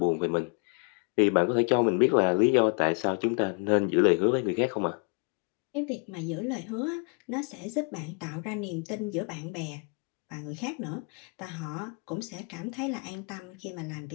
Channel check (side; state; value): right; quieter; 36.7 dB